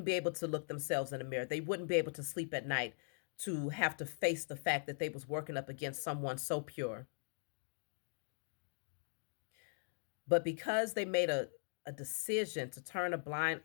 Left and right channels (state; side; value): silent; right; digital silence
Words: be able to look themselves in the mirror. They wouldn't be able to sleep at night to have to face the fact that they was working up against someone so pure. But because they made a decision to turn a blind